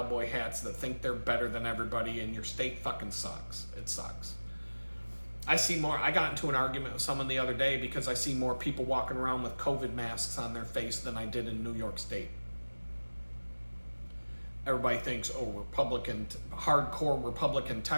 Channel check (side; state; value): both; inverted; correlation -1.00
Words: hats that think they're better than everybody, and your state fucking sucks. It sucks. I see more. I got into an argument with someone the other day because I see more people walking around with COVID masks on their face than I did in New York State. Everybody thinks, oh, Republican, hardcore Republican